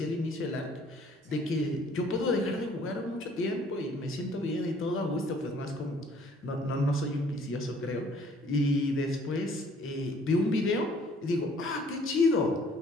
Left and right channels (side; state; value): both; normal; correlation 0.59